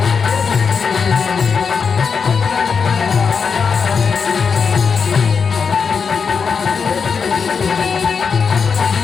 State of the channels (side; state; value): right; quieter; 5.8 dB